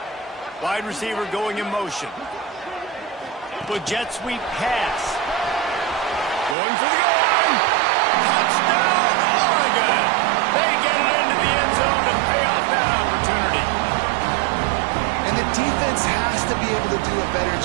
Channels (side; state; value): left; drops out; at 6.6 s